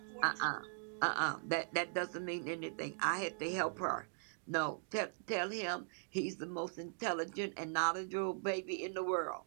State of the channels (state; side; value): silent; left; digital silence